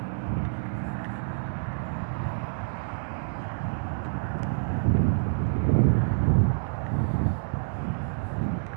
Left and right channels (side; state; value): left; silent; 60 dB below the other